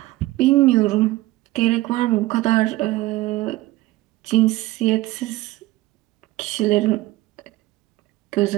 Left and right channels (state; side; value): quieter; left; 18.2 dB